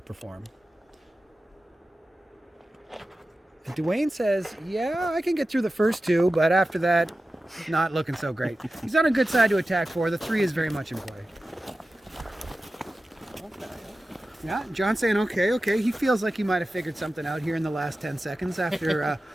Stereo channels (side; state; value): both; normal; correlation 0.94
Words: perform. And Dwayne says, yeah, I can get through the first 2, but after that, not looking so great. He's on a good side to attack for. The 3 is very much in play. Yeah, John's saying okay. He feels like he might have figured something out here in the last 10 seconds after